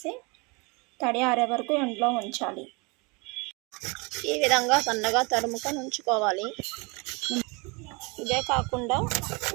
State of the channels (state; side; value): quieter; left; 28.8 dB